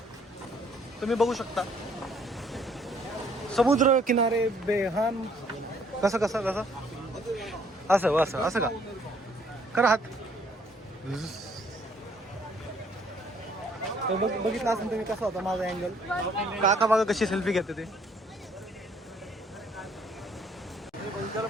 तुम्ही बघू शकता. समुद्र किनारे बेहान. कसं असं का करा हात. बघितलं असेल तुम्ही कसा होता माझा अँगल. काका बघा कशी सेल्फी घेते ते. त्याला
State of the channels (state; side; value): normal; both; correlation 0.63